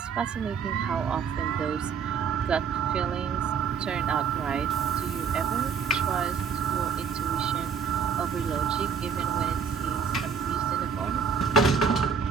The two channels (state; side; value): quieter; left; 6.3 dB